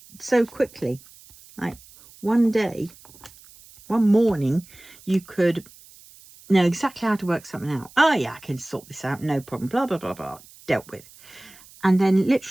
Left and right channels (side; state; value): right; noise; hiss, 23 dB below the sound